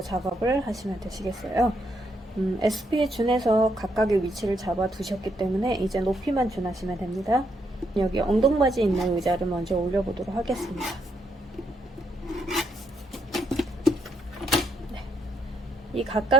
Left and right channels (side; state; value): both; normal; correlation 0.76